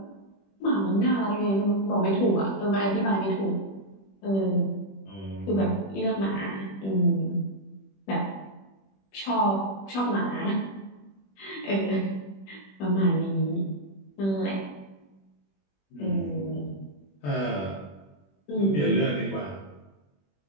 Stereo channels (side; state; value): right; late; 21 ms